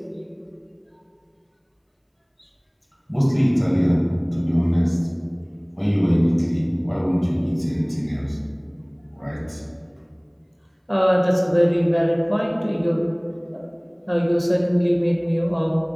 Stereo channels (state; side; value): identical; both; correlation 1.00